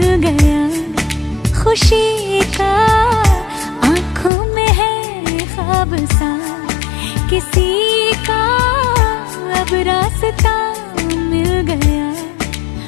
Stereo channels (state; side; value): drops out; right; at 4.3 s